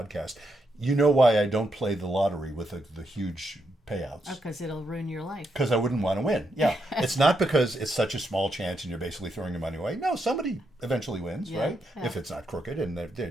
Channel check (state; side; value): normal; both; correlation 0.81